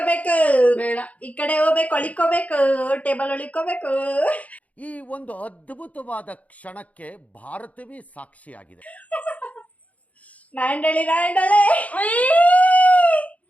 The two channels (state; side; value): late; right; 0.069 ms